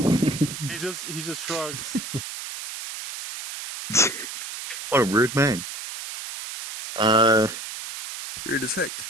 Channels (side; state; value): right; noise; hiss, 9 dB below the sound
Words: just shrugs. What a rude man. Rude as heck.